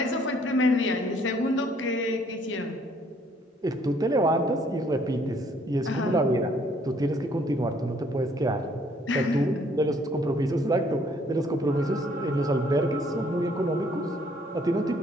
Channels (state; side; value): normal; both; correlation 0.64